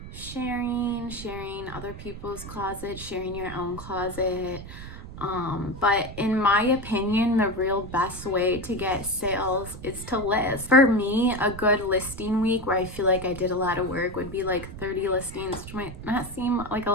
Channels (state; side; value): noise; right; rumble, 12 dB below the sound